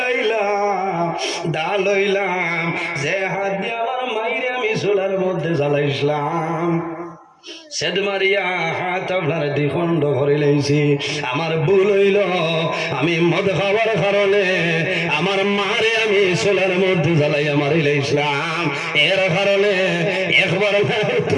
আইলাম, দা লইলাম, যে হাত দিয়ে আমার মাইরে আমি চুলার মধ্যে জ্বালাইছিলাম, সেদ মারিয়া হাত আপনার দ্বিখণ্ড করে লেছি। আমার ভুল হইল, আমি মদ খাওয়ার কারণে আমার মারে আমি চুলার মধ্যে জ্বালাইয়া মারি লাইছিলাম। এর কারণে একবার না,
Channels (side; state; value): both; identical; correlation 1.00